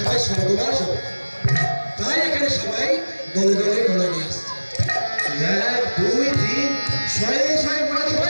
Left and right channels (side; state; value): both; inverted; correlation -1.00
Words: স্বর্গবাস হবে তাই এখানে সবাই দলে দলে মনে নিয়ে আসছে 1 2 3 শয়ে মনে